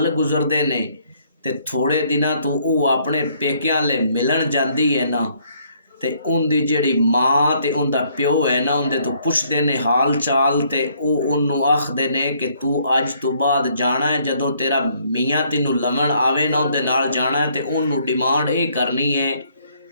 गुजरते ने ते थोड़े दिनों तो वो अपने पेकियां ले मिलन जाती है ना, ते उनकी जिहड़ी माँ ते उनका प्यो है ना, उनके तो पुछते ने हाल चाल ते वो उन्होंने आखते ने कि तू अज तो बाद जाना है, जदों तेरा मियाँ तेनों लवन आवे ना उहदे नाल जाना है। ते उन्होंने डिमांड ये करनी है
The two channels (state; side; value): inverted; both; correlation -0.66